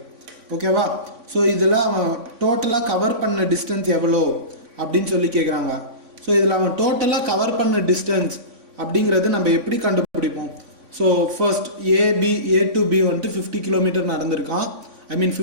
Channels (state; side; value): late; left; 3.5 ms